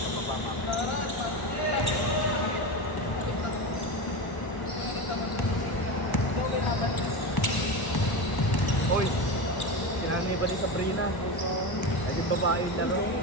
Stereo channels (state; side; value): late; right; 1.0 ms